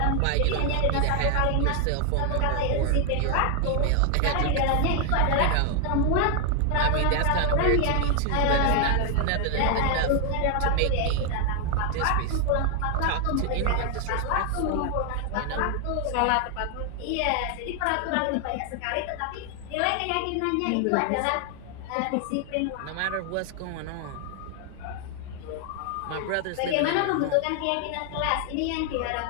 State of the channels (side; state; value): both; different; correlation 0.00